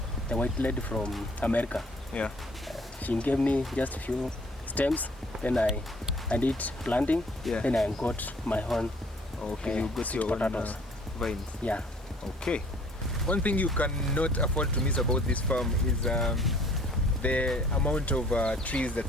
The white lady from America. Yeah. She gave me just a few stems. Then I did planting. Yeah. Then I got my own. Okay, you got sweet your own potatoes. vines. Yeah. Okay. One thing you cannot afford to miss about this farm is the amount of trees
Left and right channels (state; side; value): normal; both; correlation 0.56